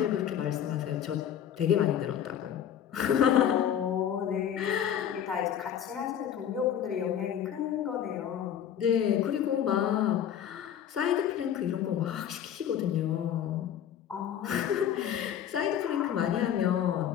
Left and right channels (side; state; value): right; quieter; 9.6 dB